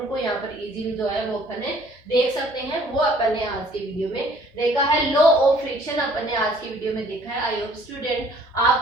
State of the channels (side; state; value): both; normal; correlation 0.57